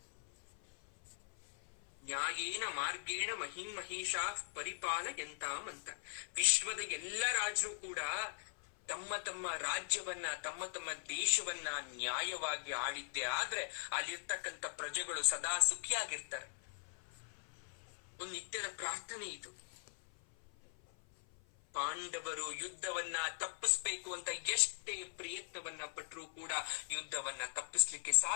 ನ್ಯಾಯೇನ ಮಾರ್ಗೇಣ ಮಹಿಂ ಮಹಿಷಾ ಪರಿಪಾಲಯಂತಾಮಂತ. ವಿಶ್ವದ ಎಲ್ಲ ರಾಜರು ಕೂಡ ತಮ್ಮ ತಮ್ಮ ರಾಜ್ಯವನ್ನ, ತಮ್ಮ ತಮ್ಮ ದೇಶವನ್ನ ನ್ಯಾಯವಾಗಿ ಆಳಿದ್ದೆ ಆದ್ರೆ ಅಲ್ಲಿರ್ತಕ್ಕಂಥ ಪ್ರಜೆಗಳು ಸದಾ ಸುಖಿಯಾಗಿರ್ತಾರೆ. ಒಂದು ನಿತ್ಯದ ಪ್ರಾರ್ಥನೆ ಇದು. ಪಾಂಡವರು ಯುದ್ಧವನ್ನ ತಪ್ಪಿಸ್ಬೇಕು ಅಂತ ಎಷ್ಟೇ ಪ್ರಯತ್ನವನ್ನ ಪಟ್ಟರೂ ಕೂಡ ಯುದ್ಧವನ್ನ ತಪ್ಪಿಸ್ಲಿಕ್ಕೆ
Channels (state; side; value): silent; right; 51 dB below the other